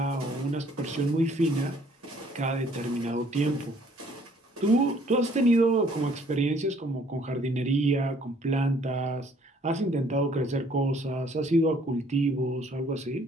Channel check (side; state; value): both; normal; correlation 0.60